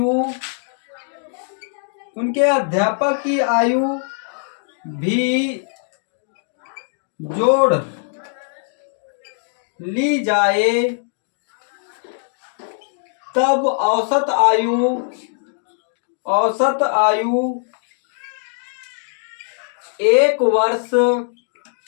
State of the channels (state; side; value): silent; right; digital silence